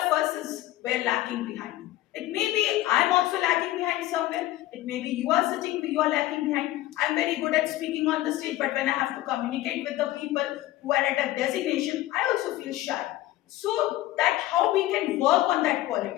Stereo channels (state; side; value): quieter; right; 15.7 dB